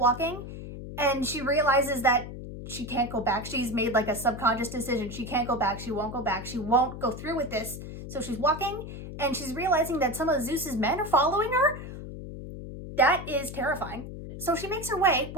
And she realizes that she can't go back. She's made like a subconscious decision. She can't go back. She won't go back. She won't go through with this. So she's walking and she's realizing that some of Zeus's men are following her. That is terrifying. So she makes her way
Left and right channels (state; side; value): noise; left; hum, 10 dB below the sound